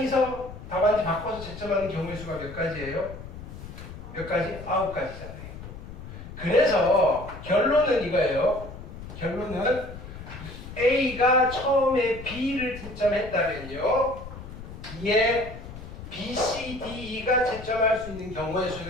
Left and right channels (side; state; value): left; noise; rumble, 12 dB below the sound